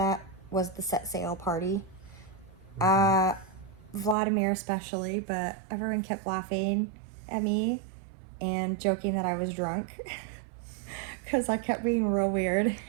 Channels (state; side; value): drops out; left; at 4.2 s